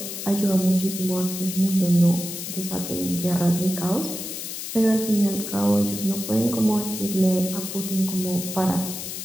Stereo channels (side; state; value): left; noise; hiss, 7 dB below the sound